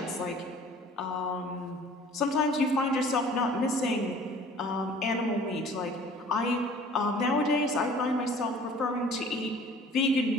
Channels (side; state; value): both; normal; correlation 0.49